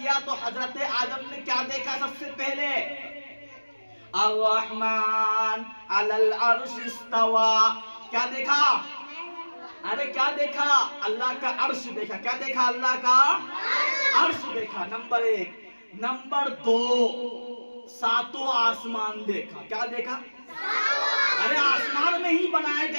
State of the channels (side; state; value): both; inverted; correlation -1.00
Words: तो हजरत आदम ने क्या देखा? सबसे पहले अर्रहमान अलल अर्श इस्तवा। क्या देखा? अरे क्या देखा? अल्लाह का अर्श देखा। क्या देखा? अल्लाह का अर्श देखा, नंबर 1। नंबर 2, 7 आसमान देखा। क्या देखा? अरे आसमान में ही बनाए